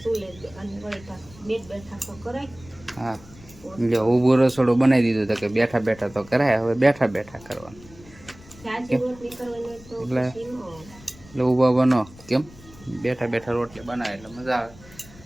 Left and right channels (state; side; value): noise; left; rumble, 22 dB below the sound